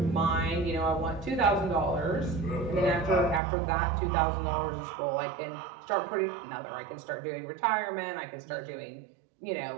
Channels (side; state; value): left; drops out; at 3.4 s